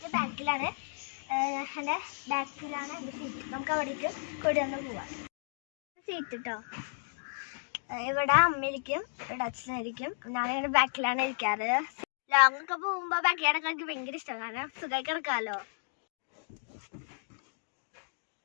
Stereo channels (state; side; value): silent; right; digital silence